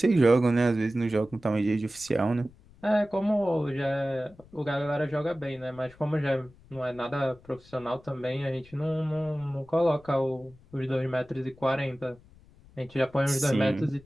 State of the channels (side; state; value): left; noise; rumble, 25 dB below the sound